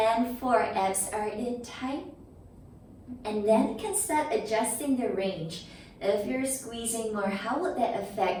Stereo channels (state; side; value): identical; both; correlation 1.00